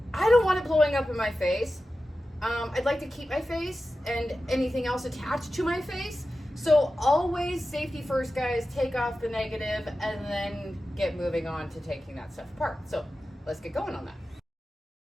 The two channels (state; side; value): normal; both; correlation 0.93